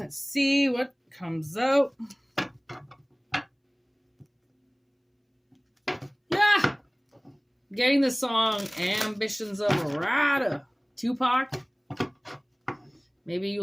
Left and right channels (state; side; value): identical; both; correlation 1.00